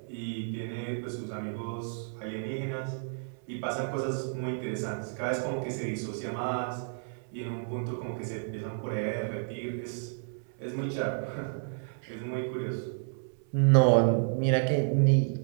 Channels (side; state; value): left; silent; 57 dB below the other